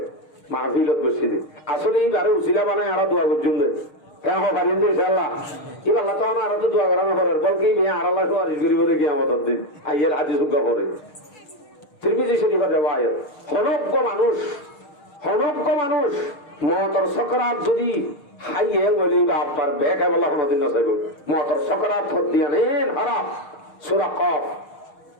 মাহফিলত বসি দে আসলে এইবারে উচিলা বানায় আরা দোয়া করছুন দে কেন পারিন ইনশাআল্লাহ ইবাল্লাহ তখন আর তো দোয়া করানো করে বল কি বিয়া আর আল্লাহ সুবহানাহু গরিব দেখি আমাদের দিন আইয়ের হাদিস উদ্গা করে তিরমিজি শরীফের riwayat হনজ্ঞ মানুষ মতর সকরাত যদি হাইয়ে বলি বা আপনার বেকায় বলা কোনদিন না চাইব মতর সকরাত দিয়া নেন হারাম সূরা কফ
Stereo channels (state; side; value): late; right; 6.5 ms